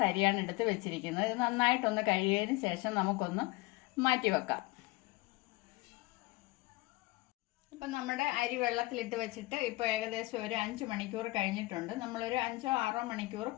അരിയാണ് എടുത്ത് വെച്ചിരിക്കുന്നത്. ഇത് നന്നായിട്ടൊന്ന് കഴുകിയതിന് ശേഷം നമുക്കൊന്ന് മാറ്റി വെക്കാം. അപ്പം നമ്മുടെ അരി വെള്ളത്തിലിട്ട് വെച്ചിട്ട് ഇപ്പോൾ ഏകദേശം ഒരു 5 മണിക്കൂർ കഴിഞ്ഞിട്ടുണ്ട്. നമ്മളൊരു 5-6 മണിക്കൂർ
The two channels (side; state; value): right; quieter; 21.5 dB